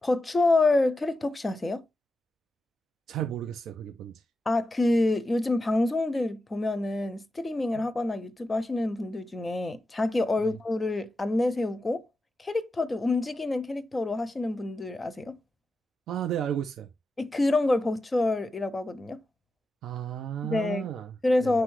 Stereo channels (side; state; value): both; normal; correlation 0.89